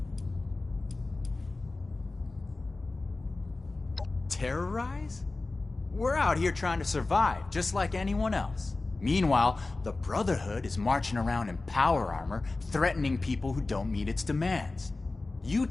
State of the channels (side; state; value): right; quieter; 3.3 dB